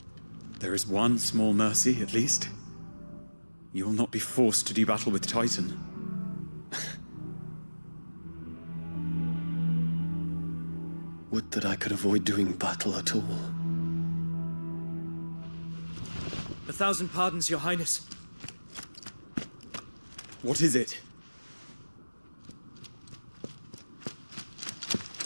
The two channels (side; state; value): both; inverted; correlation -1.00